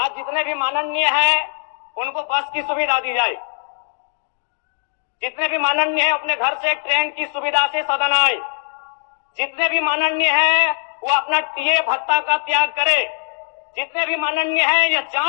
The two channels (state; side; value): silent; right; digital silence